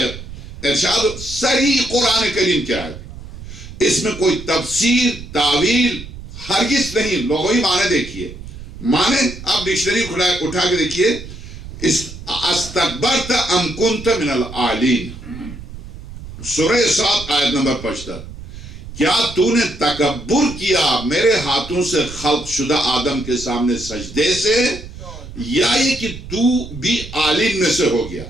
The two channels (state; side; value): noise; right; rumble, 13 dB below the sound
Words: ارشاد صریح قرآن کریم کی آیت، اس میں کوئی تفسیر تعویل ہرگز نہیں، لغوی معنی دیکھیے، معنی آپ ڈکشنری اٹھا کے دیکھیے، استکبرت ام کنت من العالین، سورہ 7 آیت نمبر 75، کیا تو نے تکبر کیا میرے ہاتھوں سے خلق شدہ آدم کے سامنے سجدے سے، یا یہ کہ تو بھی عالم میں سے ہو گیا؟